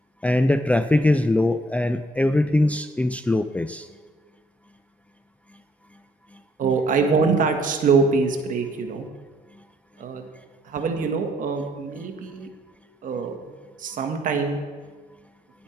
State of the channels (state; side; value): normal; both; correlation 0.67